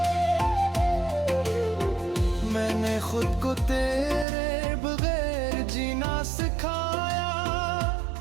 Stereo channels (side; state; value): left; drops out; at 4.2 s